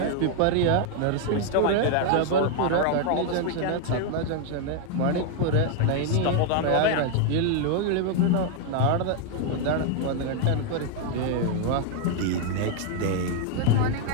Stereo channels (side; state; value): both; different; correlation 0.00